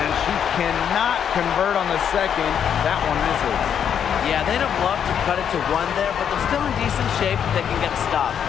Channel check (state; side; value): quieter; right; 8.4 dB